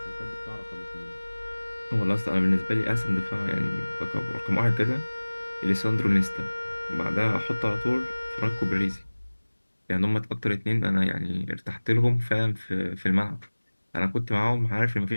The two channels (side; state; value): both; inverted; correlation -1.00